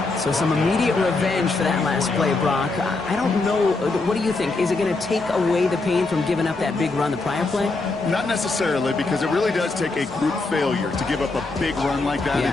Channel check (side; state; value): right; quieter; 3.5 dB